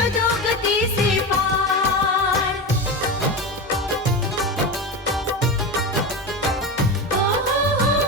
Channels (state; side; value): normal; both; correlation 0.22